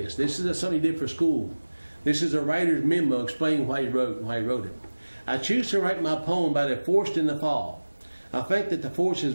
This is something he did for school. This is a writer's memo explaining why he wrote it. "I choose to write my poem about a forest in the fall. I think that the forest is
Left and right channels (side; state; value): both; inverted; correlation -1.00